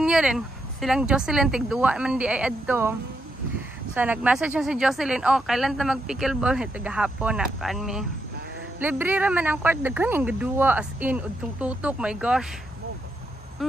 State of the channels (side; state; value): both; normal; correlation 0.81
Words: din silang Jocelyn tigduwa man di ay adto so nag-message si Jocelyn kailan ta mag pickleball ito gahapon na kan mi libre ra man ang court daghan yung gaduwa as in udtong tutok my gosh